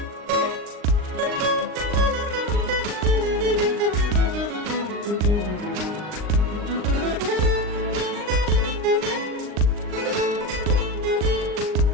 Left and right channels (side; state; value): left; late; 39 ms